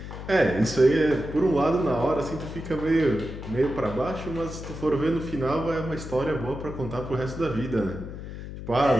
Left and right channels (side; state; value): left; noise; hum, 10 dB below the sound